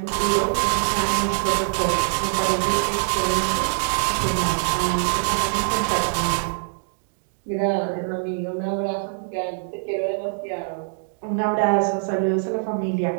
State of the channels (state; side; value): silent; left; digital silence